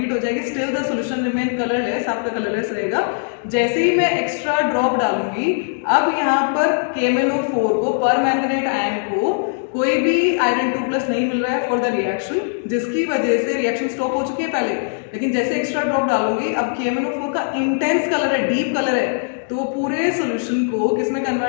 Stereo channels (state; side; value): silent; right; digital silence